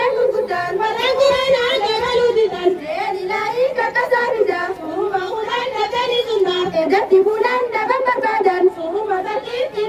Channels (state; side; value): identical; both; correlation 1.00